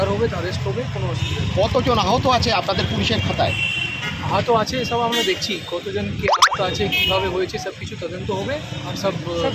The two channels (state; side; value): identical; both; correlation 1.00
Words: হবে অ্যারেস্ট হবে, কোনো অসুবিধা নেই। কতজন আহত আছে আপনাদের পুলিশের খাতায়? আহত আছে সব আমরা দেখছি, কতজন কি আহত আছে, কীভাবে হয়েছে, সব কিছু তদন্ত হবে আর সব ধরা